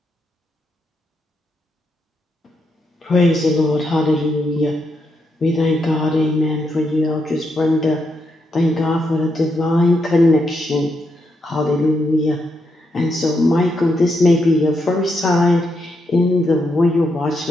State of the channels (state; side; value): normal; both; correlation 0.81